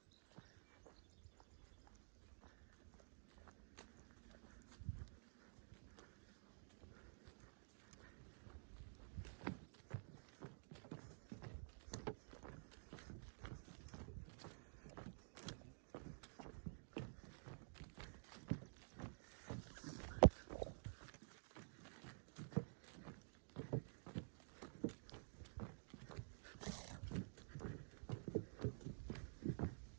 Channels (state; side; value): silent; left; digital silence